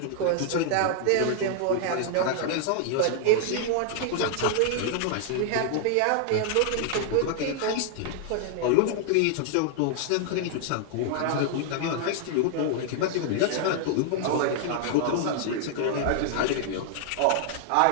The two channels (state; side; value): different; both; correlation 0.00